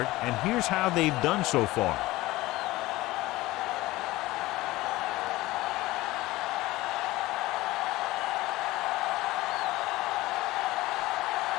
it, and here's how they've done so far.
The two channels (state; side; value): quieter; right; 18.6 dB